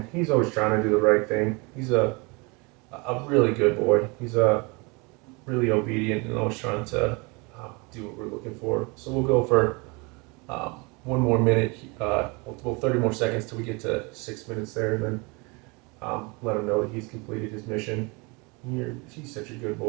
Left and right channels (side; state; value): left; quieter; 28.6 dB